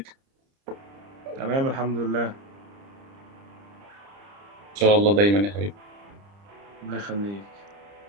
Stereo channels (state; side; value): late; left; 30 ms